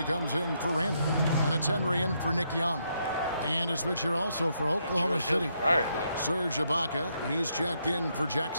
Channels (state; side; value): inverted; both; correlation -0.77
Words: comes in for Randall. And it's Henry in for Nick Young. And a switch here also for Oklahoma City. Serge Ibaka, he's checked in for